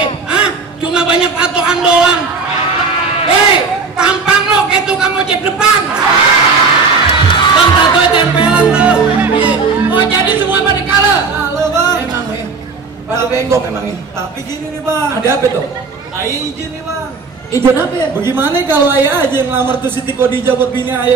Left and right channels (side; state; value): left; quieter; 4.7 dB